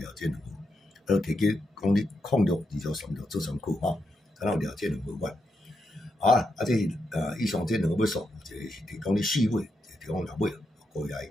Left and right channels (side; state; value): both; normal; correlation 0.84